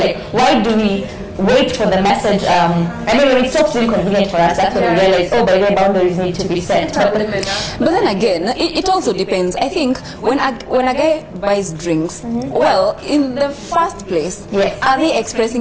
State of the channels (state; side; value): identical; both; correlation 1.00